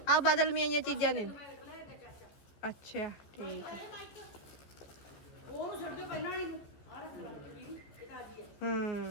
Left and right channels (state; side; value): late; right; 15 ms